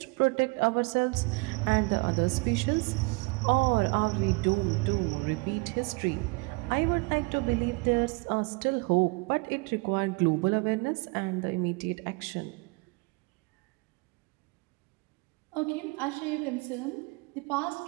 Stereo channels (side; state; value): left; quieter; 28.3 dB